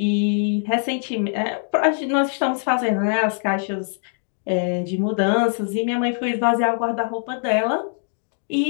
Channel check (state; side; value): silent; right; 64 dB below the other